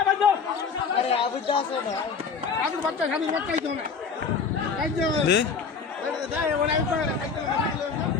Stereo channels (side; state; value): right; quieter; 5.5 dB